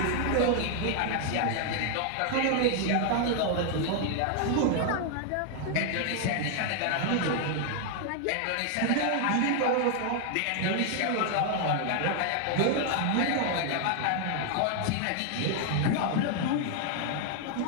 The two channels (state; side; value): different; both; correlation 0.00